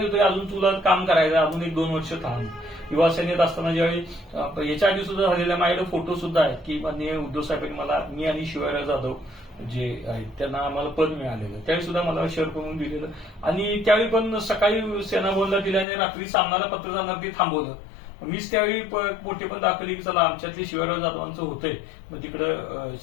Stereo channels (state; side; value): drops out; right; at 15.9 s